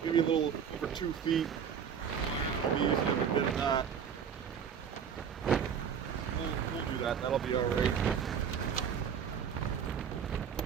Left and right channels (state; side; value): quieter; left; 7.6 dB